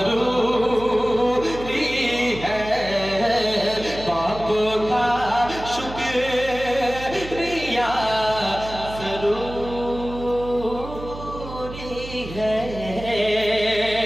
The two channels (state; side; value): noise; right; hum, 12 dB below the sound